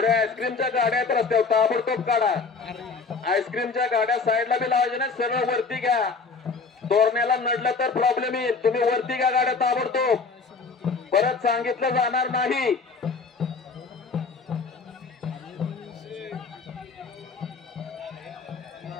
आईस्क्रीमच्या गाड्या आहेत रस्त्यावर, ताबडतोब काढा. आईस्क्रीमच्या गाड्या साईडला बी लावायच्या नाही, सरळ वरती घ्या. तोरण्याला नडलं तर प्रॉब्लेम येईल. तुम्ही वरती घ्या गाड्या ताबडतोब, परत सांगितलं जाणार नाही.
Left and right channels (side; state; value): right; quieter; 4.6 dB